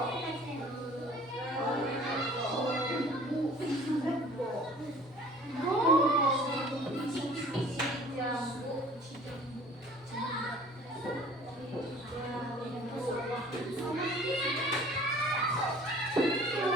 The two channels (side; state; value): both; normal; correlation 0.49